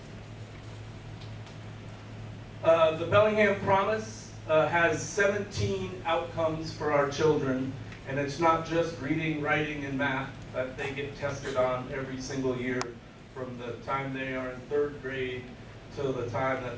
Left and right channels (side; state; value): both; identical; correlation 1.00